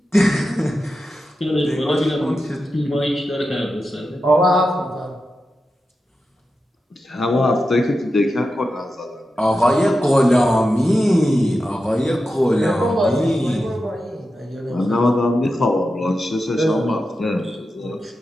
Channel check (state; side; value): normal; both; correlation 0.90